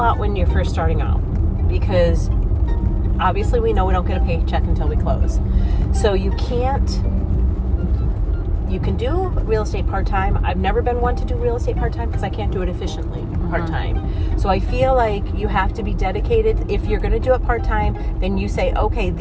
when you're first starting out because obviously we know we don't get a paycheck until we close. So you can do real estate part-time. I've never been one to do real estate part-time because I can't do it efficiently part-time. So I feel like you have to be dedicated. If you're going to do it part-time, then you say, okay,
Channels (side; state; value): both; identical; correlation 1.00